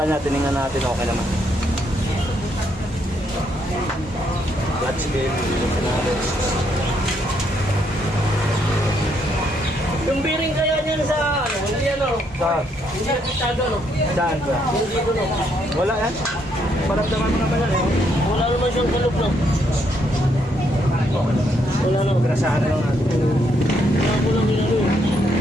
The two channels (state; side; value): normal; both; correlation 0.73